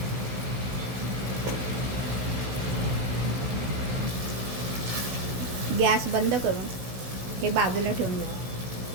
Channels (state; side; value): late; left; 16 ms